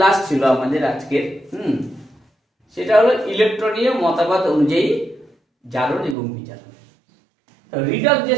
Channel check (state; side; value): drops out; left; at 6.2 s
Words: লাস্ট ছিল আমাদের আজকের, সেটা হলো ইলেকট্রনীয় মতবাদ অনুযায়ী জারণ এবং বিজারণ। তো রিডক্স যে